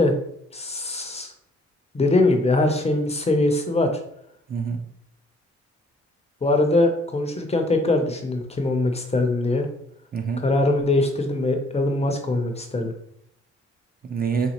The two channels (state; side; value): normal; both; correlation 0.63